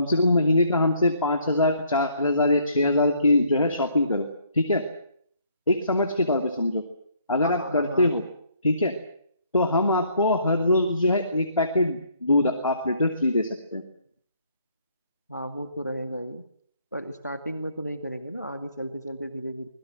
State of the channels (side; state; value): both; inverted; correlation -0.65